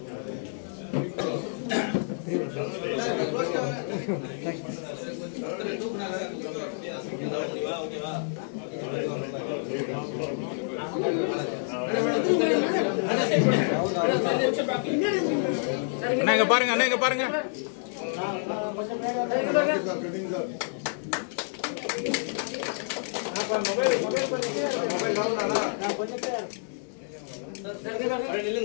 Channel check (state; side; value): silent; right; 59 dB below the other